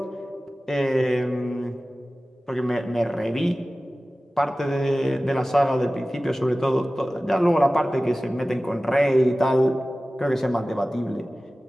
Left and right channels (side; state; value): both; normal; correlation 0.97